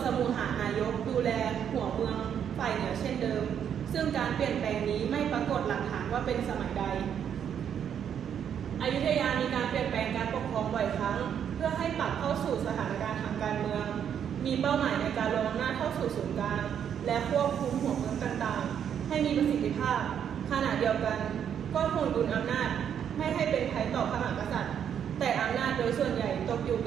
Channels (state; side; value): quieter; left; 8.6 dB